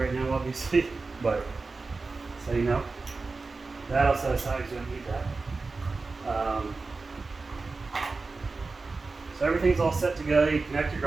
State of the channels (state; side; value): quieter; left; 3.9 dB